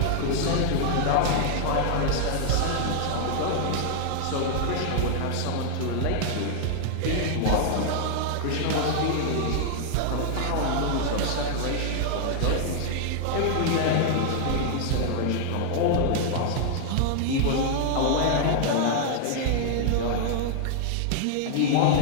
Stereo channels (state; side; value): different; both; correlation -0.01